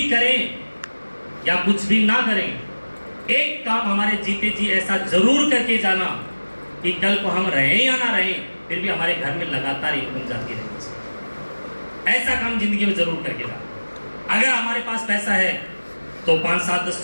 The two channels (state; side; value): inverted; both; correlation -1.00